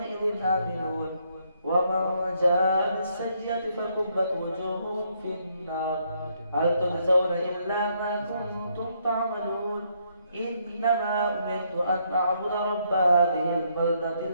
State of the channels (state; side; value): inverted; both; correlation -0.73